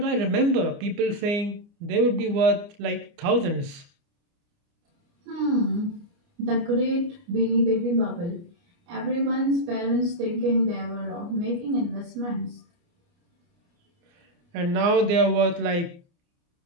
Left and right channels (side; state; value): left; late; 29 ms